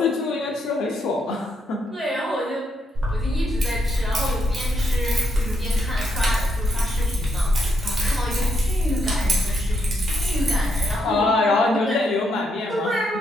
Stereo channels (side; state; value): both; normal; correlation 0.78